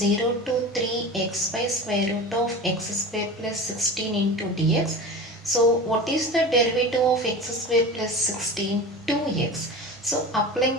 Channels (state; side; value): normal; both; correlation 0.32